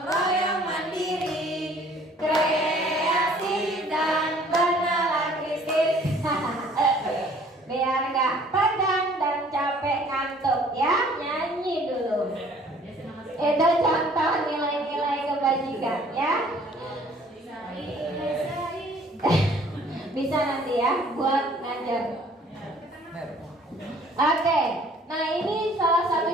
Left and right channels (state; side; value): normal; both; correlation 0.56